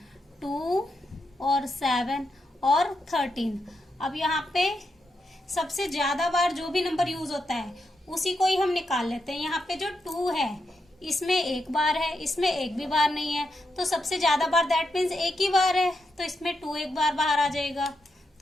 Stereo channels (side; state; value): both; normal; correlation 0.84